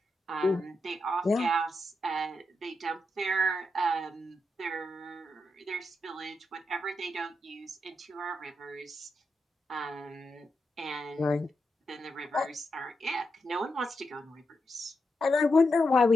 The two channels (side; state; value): both; normal; correlation 0.85